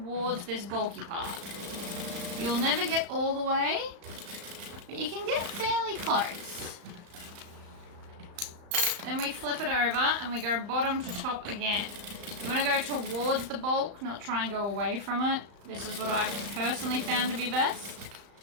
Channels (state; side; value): late; left; 35 ms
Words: this bulky part. You'll never get all the way, but you can get fairly close. Then we flip it over and we go bottom to top again. You want to go towards the bulk, not try and go away from it. This is what I've personally found to be best.